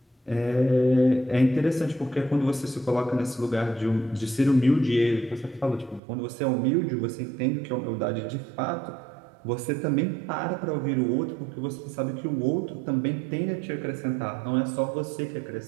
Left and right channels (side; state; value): left; drops out; at 6.0 s